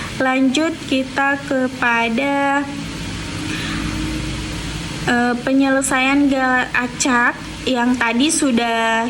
lanjut kita kepada penyelesaian galat acak yang tadi sudah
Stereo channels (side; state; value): both; identical; correlation 1.00